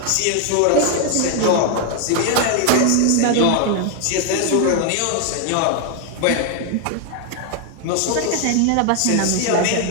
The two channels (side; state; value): both; different; correlation 0.00